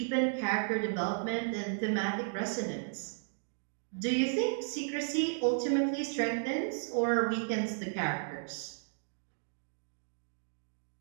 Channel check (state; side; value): silent; left; digital silence